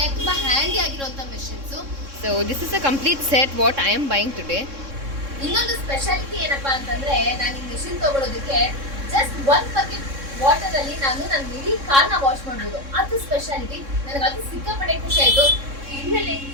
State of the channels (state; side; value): late; left; 3.6 ms